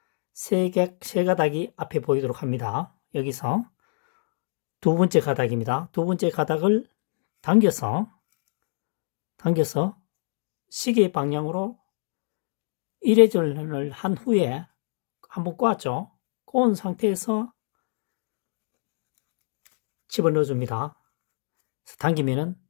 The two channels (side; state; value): right; silent; digital silence